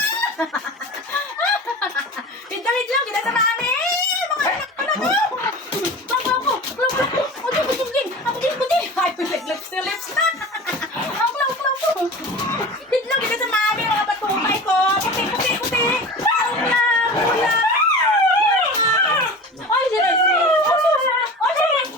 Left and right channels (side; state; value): both; normal; correlation 0.34